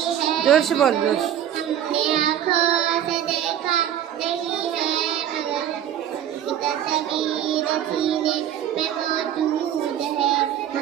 है, जोर से बोल, जोर से। हमने आँखों से देखा नहीं है मगर तस्वीर सीने में मौजूद है।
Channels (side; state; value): left; quieter; 10.5 dB